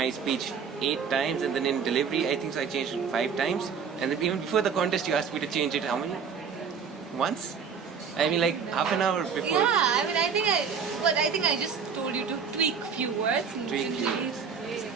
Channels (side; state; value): left; quieter; 6.4 dB